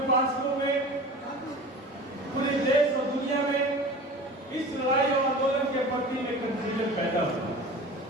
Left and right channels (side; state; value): both; normal; correlation 0.37